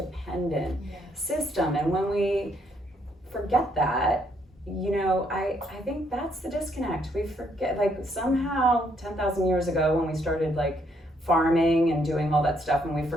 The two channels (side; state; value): both; normal; correlation 0.71